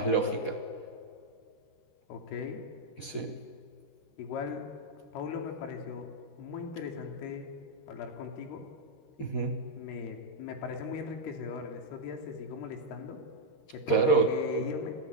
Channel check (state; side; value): late; right; 13 ms